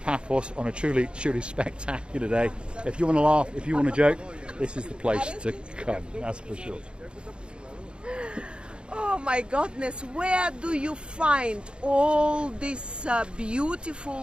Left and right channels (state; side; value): late; left; 0.054 ms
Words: on a truly, truly spectacular day. If you want to laugh, if you want to joke, this is the place to come. That's for sure. Oh my goodness, where do you find all these